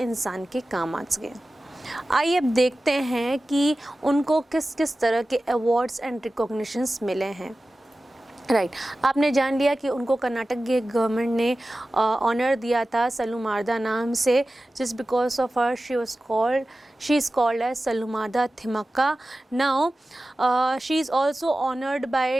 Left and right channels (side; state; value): both; normal; correlation 0.95